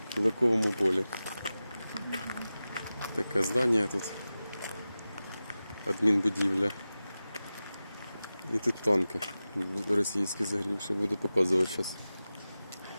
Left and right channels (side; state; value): both; inverted; correlation -0.95